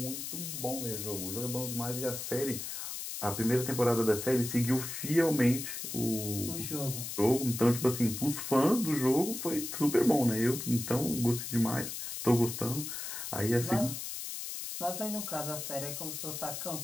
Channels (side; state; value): left; noise; hiss, 6 dB below the sound